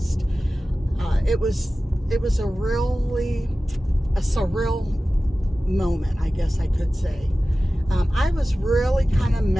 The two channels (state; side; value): normal; both; correlation 0.96